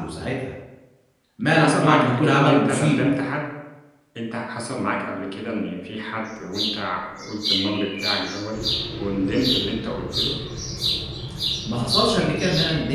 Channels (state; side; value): identical; both; correlation 1.00